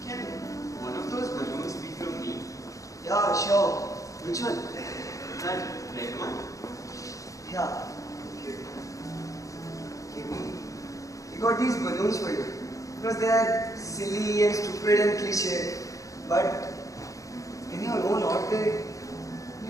can one of those balloons be from me? Yeah, sure. Which one? That red one? Yeah. We got these balloons for you. Because they're silly and stupid and cliche. But in your own odd way,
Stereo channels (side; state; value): right; late; 0.16 ms